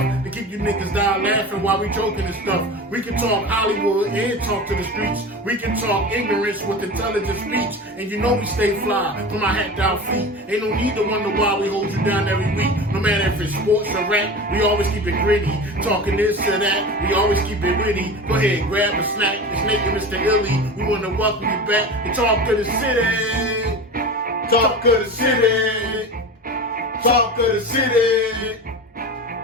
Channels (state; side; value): normal; both; correlation 0.31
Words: to keep you niggas down laughing while we joking and stuff. We can talk Hollywood and talk to the streets. We can talk ignorance with intelligent speech. And you know we stay fly from our hat down feet. Ain't no need to wonder why we hold you down every week. No matter if it's sports or rap, we always keep it gritty. Talking this or that, we always keep it witty. Go ahead, grab a snack. It's Nate and Mr. Illy. We want to welcome you back and talk to the city. Talk to the city. Talk to the city.